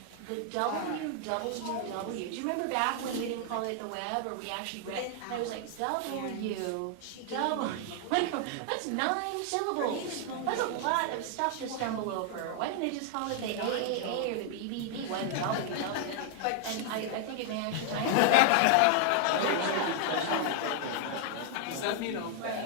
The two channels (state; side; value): different; both; correlation 0.00